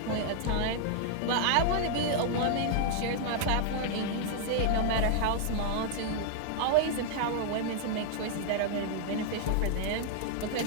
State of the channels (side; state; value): both; different; correlation -0.01